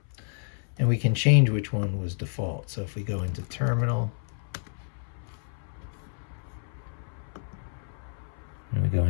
And we can change which one was default. So if we go into terminal, and we go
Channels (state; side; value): silent; right; 58 dB below the other